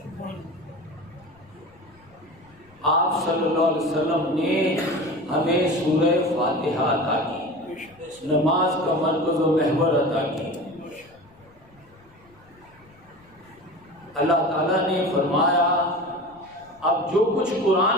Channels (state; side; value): noise; left; rumble, 29 dB below the sound